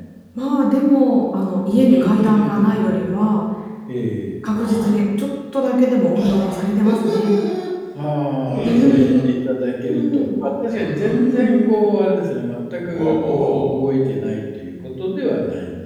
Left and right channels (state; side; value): identical; both; correlation 1.00